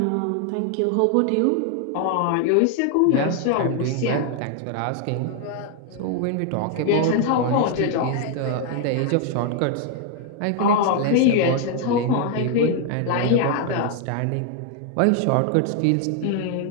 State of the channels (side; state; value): both; different; correlation 0.00